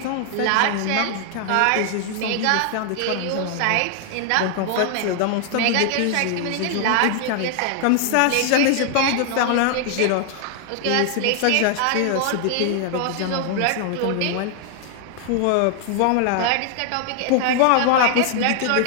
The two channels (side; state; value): both; different; correlation 0.00